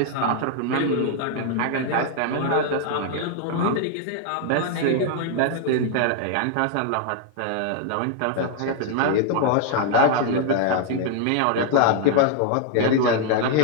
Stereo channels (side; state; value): both; different; correlation 0.00